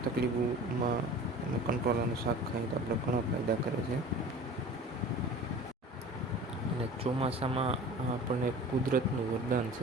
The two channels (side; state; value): both; normal; correlation 0.41